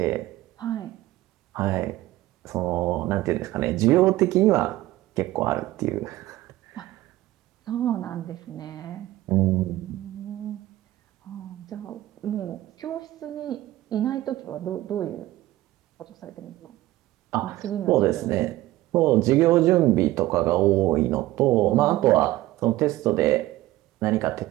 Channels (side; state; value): left; quieter; 16.5 dB